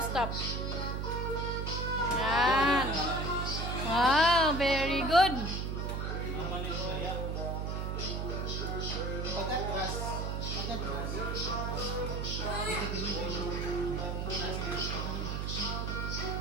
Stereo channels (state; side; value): noise; right; hum, 2 dB below the sound